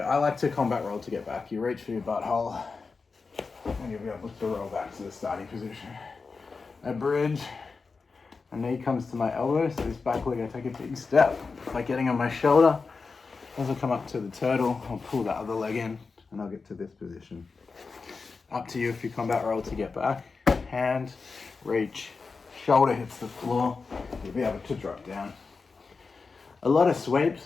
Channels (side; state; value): right; quieter; 4.5 dB